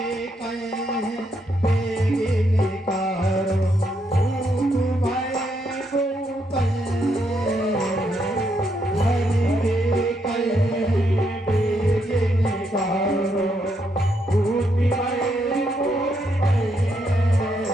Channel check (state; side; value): normal; both; correlation 0.77